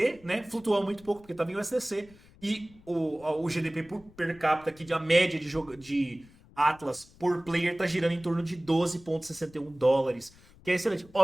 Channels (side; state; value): left; noise; rumble, 25 dB below the sound